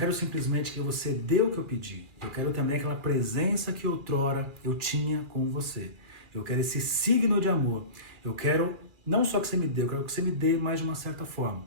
simplesmente que você dê o que eu pedi. Eu quero também aquela presença que outrora eu tinha com você. Eu quero esse signo de amor. Eu quero não só que você me dê, eu quero que você me dê mais de uma certa forma.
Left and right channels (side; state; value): left; late; 2.4 ms